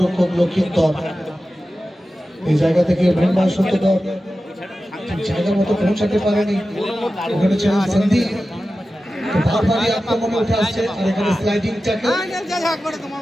লক্ষিন্দর। এই জায়গা থেকে মৃন্ময় সত্যধর জায়গা মতো পৌঁছাতে পারেনি, ওখানে ছিলেন সন্দীপ, বারবারই আক্রমণে উঠে আসছে। আর এখানে স্লাইডিং ট্যাকল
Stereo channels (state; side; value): normal; both; correlation 0.94